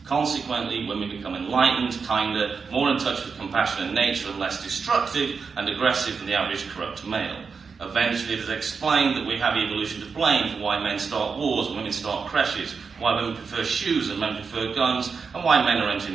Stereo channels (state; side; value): quieter; left; 5.3 dB